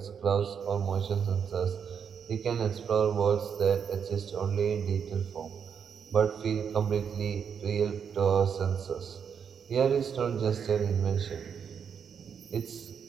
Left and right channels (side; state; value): left; quieter; 7.2 dB